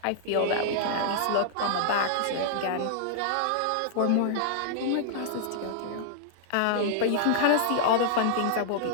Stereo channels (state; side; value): different; both; correlation -0.01